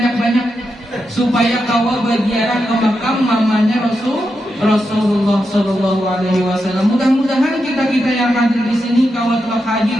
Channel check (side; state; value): both; normal; correlation 0.86